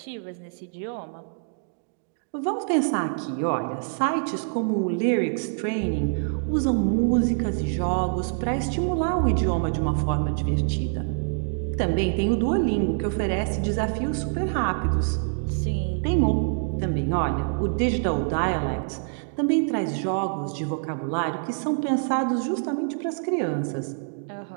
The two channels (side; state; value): left; silent; digital silence